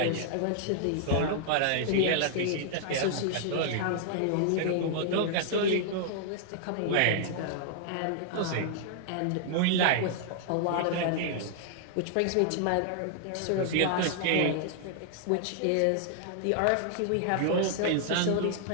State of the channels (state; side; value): different; both; correlation -0.01